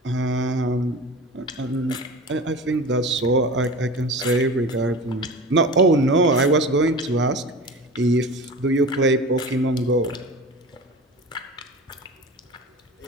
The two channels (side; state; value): both; normal; correlation 0.34